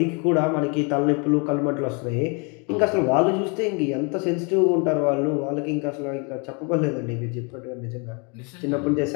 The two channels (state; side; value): quieter; right; 34.0 dB